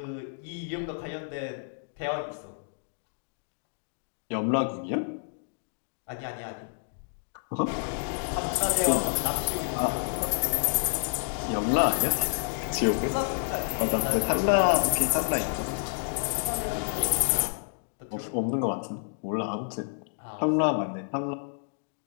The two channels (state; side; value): silent; right; digital silence